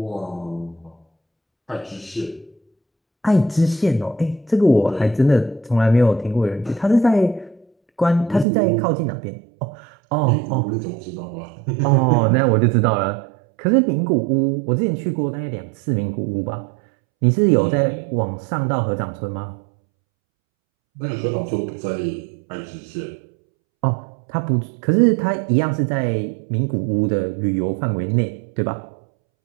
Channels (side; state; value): left; drops out; at 8.5 s